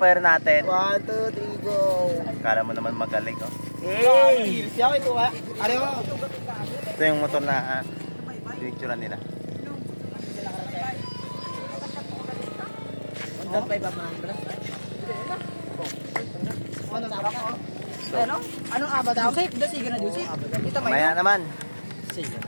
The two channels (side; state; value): both; inverted; correlation -1.00